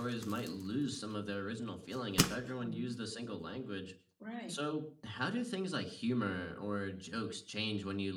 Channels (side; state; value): both; identical; correlation 1.00